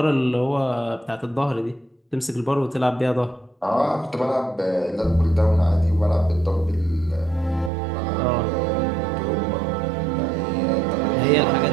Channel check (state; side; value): drops out; left; at 7.7 s